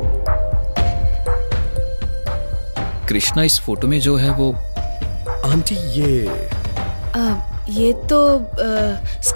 कृष्णा इस फोटो में जो है वो आंटी ये तो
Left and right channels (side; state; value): both; inverted; correlation -1.00